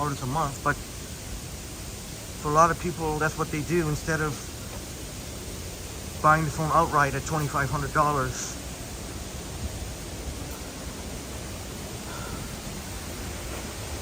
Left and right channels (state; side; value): identical; both; correlation 1.00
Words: a month, but for a lot of people, that's what they do instead of buying the phone outright at $2,500.